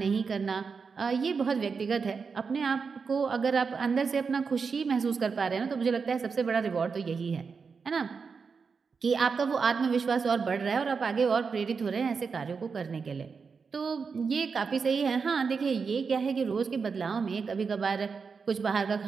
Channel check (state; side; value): quieter; left; 5.3 dB